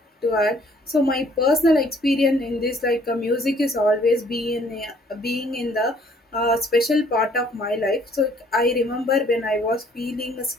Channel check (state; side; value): normal; both; correlation 0.61